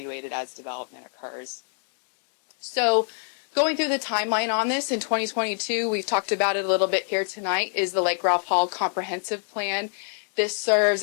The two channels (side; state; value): right; silent; 56 dB below the other